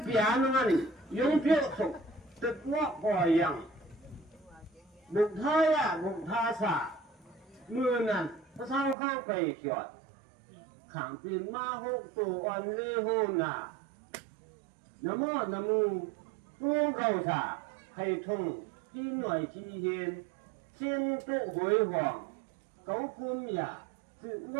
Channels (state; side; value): drops out; left; at 9.0 s